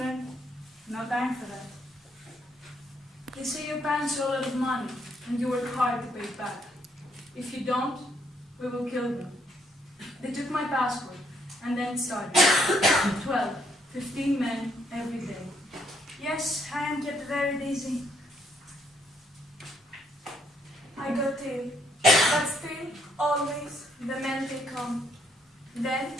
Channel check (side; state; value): both; normal; correlation 0.71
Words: No time for that. They say your parents owe a lot of money, and you work hard to pay it back. If you don't, we will kill them. They took my passport, and then it started. 12, 15 men every day. Yes, I am kept very busy. I got ill, but still, always, the men take on. Then,